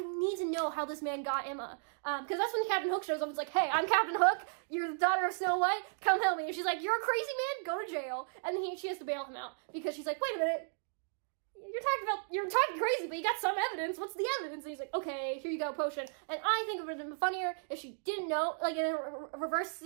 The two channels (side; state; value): left; silent; digital silence